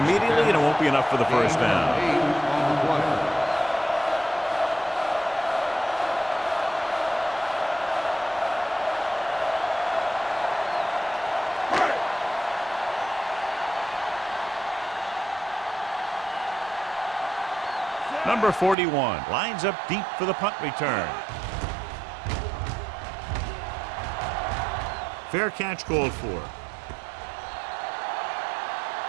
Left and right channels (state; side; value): drops out; left; at 18.8 s